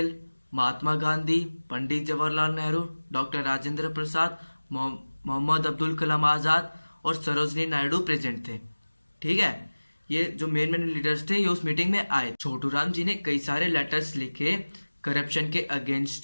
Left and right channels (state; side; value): inverted; both; correlation -1.00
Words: महात्मा गांधी, पंडित जवाहरलाल नेहरू, डॉक्टर राजेंद्र प्रसाद, मोहम्मद अब्दुल कलाम आजाद और सरोजनी नायडू प्रेजेंट थे। ठीक है। ये जो मेन लीडर्स थे ये उस मीटिंग में आए। छोटू राम जी ने कई सारे लेटर्स लिखे करप्शन के